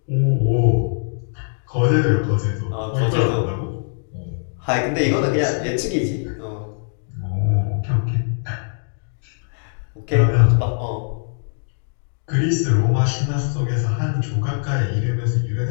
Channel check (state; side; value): silent; right; digital silence